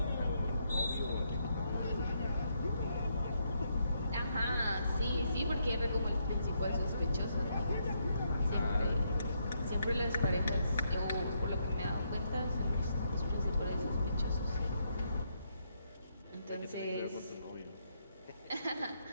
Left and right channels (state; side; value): inverted; both; correlation -0.77